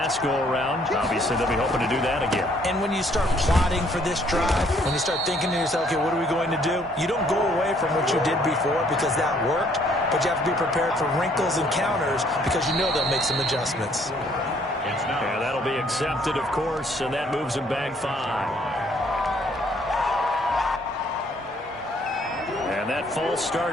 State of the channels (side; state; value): both; normal; correlation 0.64